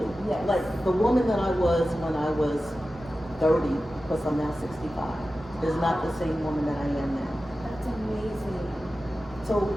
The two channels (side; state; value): both; normal; correlation 0.94